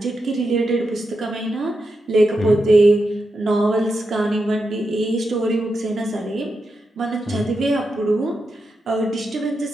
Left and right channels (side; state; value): both; normal; correlation 0.87